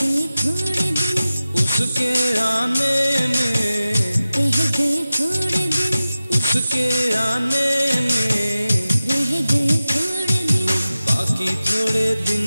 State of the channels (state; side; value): inverted; both; correlation -0.95